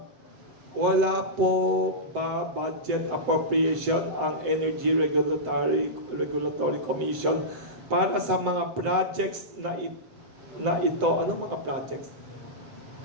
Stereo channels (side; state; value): left; late; 7.8 ms